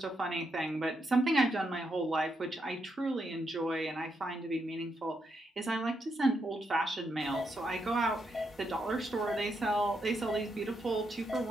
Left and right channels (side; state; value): both; normal; correlation 0.81